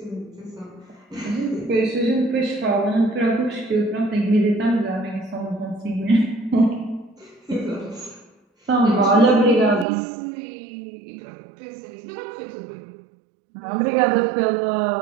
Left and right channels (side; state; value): left; drops out; at 9.9 s